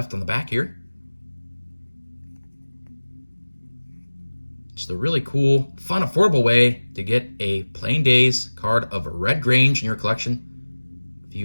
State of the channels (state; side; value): inverted; both; correlation -1.00